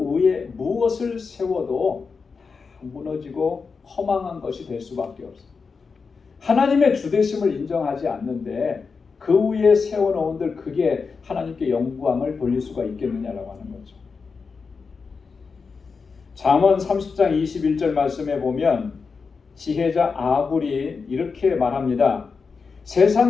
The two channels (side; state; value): right; quieter; 5.0 dB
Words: 위에 무엇을 세워도 무너지고 허망한 것이 될 수밖에 없어요. 하나님의 주되심을 인정하지 않는데 그 위에 세워놓은들 그게 하나님께 영광을 돌릴 수가 있겠느냐라고 하는 거죠. 잠언 30장 21절 말씀에 보면 지혜자 아굴이 이렇게 말합니다.